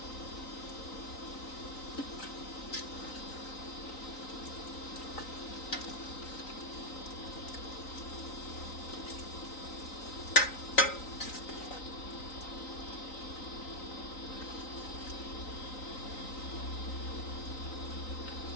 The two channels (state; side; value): late; right; 3.9 ms